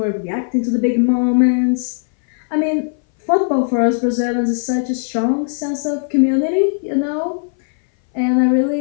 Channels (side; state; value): right; silent; 61 dB below the other